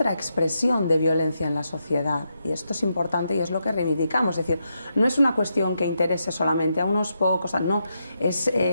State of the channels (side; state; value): both; inverted; correlation -0.83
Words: expresión de violencia en la sociedad, y esto es importante y es lo que reivindicamos. Es decir, no es una cuestión que interese solamente a unos pocos, no,